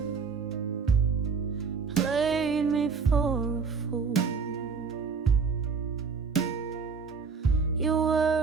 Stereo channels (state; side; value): quieter; left; 5.3 dB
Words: played me for a fool? Your